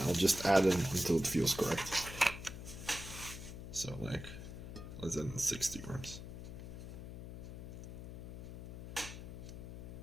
I'll just add it until it feels correct. So like, let's add in 60 grams.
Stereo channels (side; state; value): left; noise; hum, 10 dB below the sound